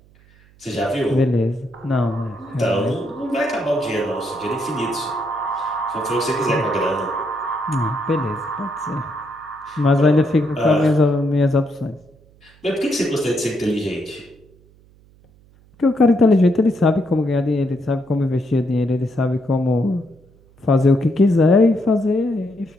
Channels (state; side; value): noise; right; hum, 29 dB below the sound